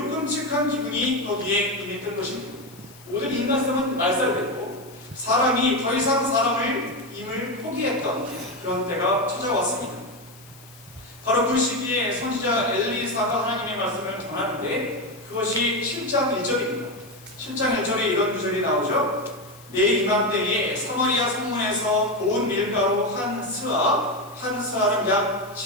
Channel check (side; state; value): left; noise; hiss, 23 dB below the sound